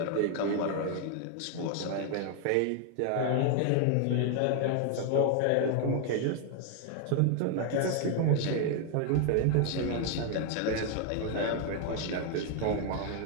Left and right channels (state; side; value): different; both; correlation 0.00